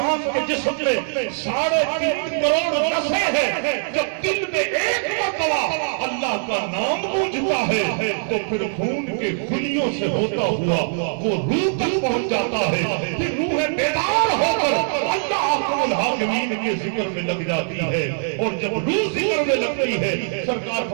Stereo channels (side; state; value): left; silent; 57 dB below the other